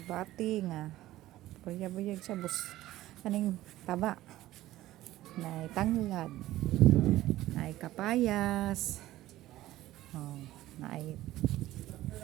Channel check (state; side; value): quieter; left; 15.5 dB